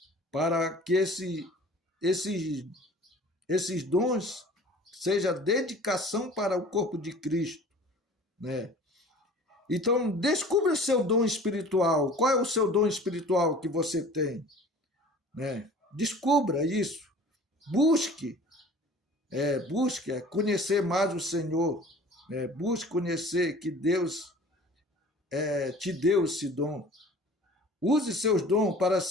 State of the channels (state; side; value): normal; both; correlation 0.45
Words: Para que esses dons seja dedicação para o corpo de Cristo, né? Então, descubra o seu dom espiritual. Qual é o seu dom espiritual que você tem? Né? Descubra isso. Busque conhecer mais o Senhor. Né? Busque conhecer que Deus te deu esse dom. Use seus dons para